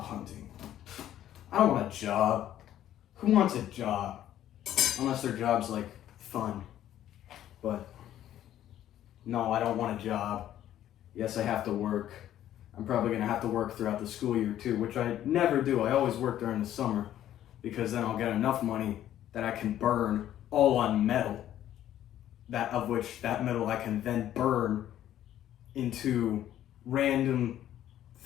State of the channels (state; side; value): quieter; right; 11.9 dB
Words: hunting. I don't want a job. Who wants a job? Unless their job's like fun. But no, I don't want a job. Yes, I have to work. I'm probably gonna have to work throughout the school year too, which I never do. I always work during the summer because then I'll get enough money that I can burn all on metal. That metal I can then burn into random